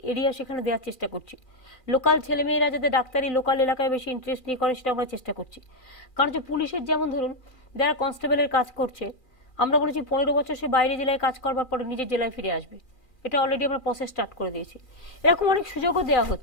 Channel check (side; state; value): right; late; 2.4 ms